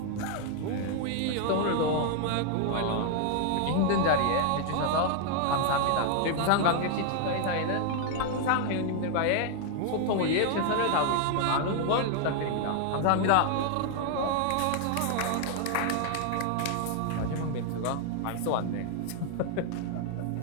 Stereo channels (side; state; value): both; different; correlation 0.00